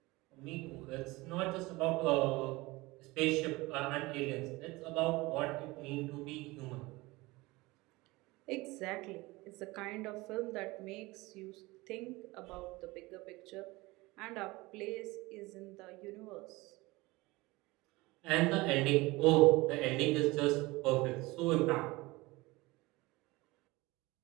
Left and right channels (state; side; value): quieter; left; 21.7 dB